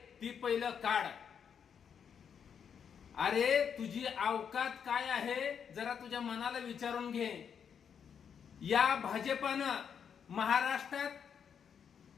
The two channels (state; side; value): quieter; right; 7.4 dB